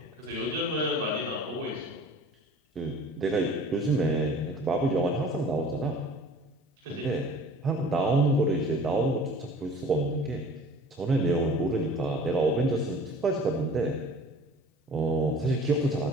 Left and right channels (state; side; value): normal; both; correlation 0.46